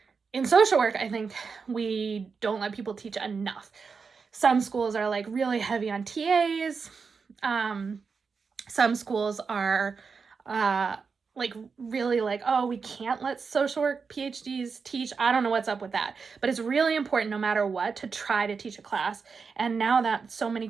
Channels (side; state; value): left; quieter; 5.3 dB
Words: In social work, I think we don't let people teach enough. Some schools are like really heavy on TAs. Some schools are really like, oh, we can't let social work PhDs teach. I don't know what's up with that. But it's really important, no matter what, to try to teach a class. And now that so many